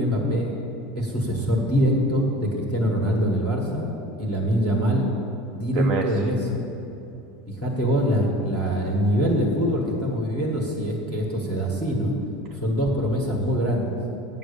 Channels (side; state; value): both; normal; correlation 0.45